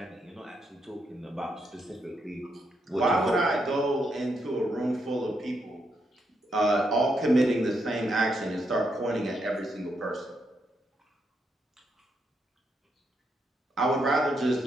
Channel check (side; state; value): both; normal; correlation 0.80